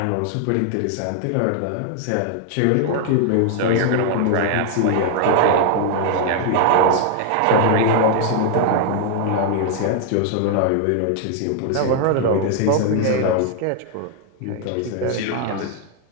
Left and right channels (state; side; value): different; both; correlation 0.00